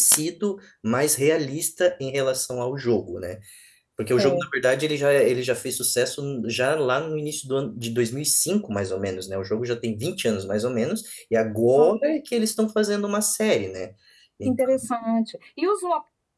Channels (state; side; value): identical; both; correlation 1.00